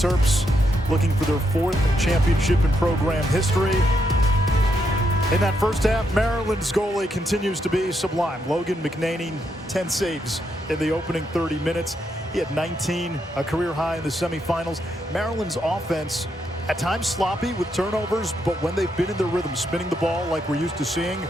looking for their 4th championship in program history. In that first half, Maryland's goalie continues to be sublime. Logan McNaney, 10 saves in the opening 30 minutes. He had 19, a career high in the semifinals. Maryland's offense at times sloppy with turnovers, but when they've been in their rhythm, spinning the ball like we're used to seeing,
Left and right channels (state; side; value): normal; both; correlation 0.79